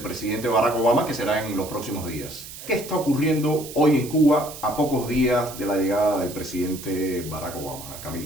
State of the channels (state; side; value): noise; right; hiss, 13 dB below the sound